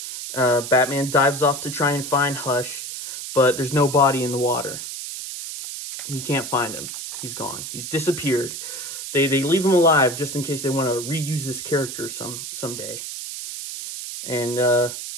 Batman dives off to try and find Hush, but there's no body in the water. He can't find him. He's gone. He's disappeared. They leave him alive just in case they want to reuse this character someday. And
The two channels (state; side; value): noise; right; hiss, 8 dB below the sound